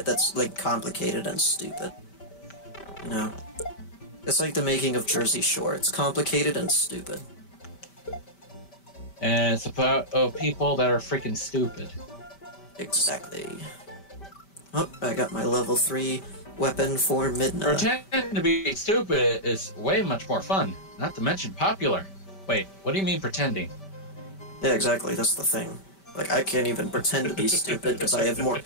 that's like complicated and stupid. You know? It's like the making of Jersey Shore. It's complicated and stupid. And it's about people that are freaking stupid. Exactly. Oh, I got my level 3 weapon for midnight. Pretending to be stupid is way much more fun. Not to mention popular. Wait, what do you mean pretending? Yeah, exactly. That's the thing. Like, I can't even pretend to be stupid because I have more.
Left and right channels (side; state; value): right; late; 5.1 ms